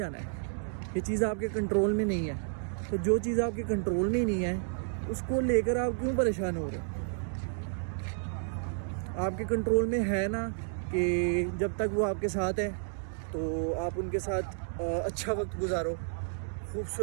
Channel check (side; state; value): left; silent; digital silence